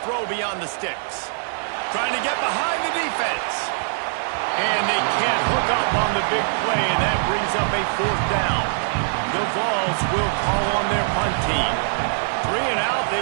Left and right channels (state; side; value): silent; left; digital silence